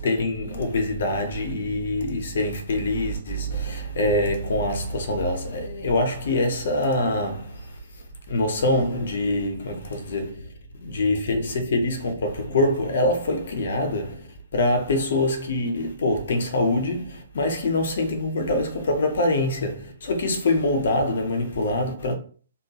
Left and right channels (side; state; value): both; inverted; correlation -0.52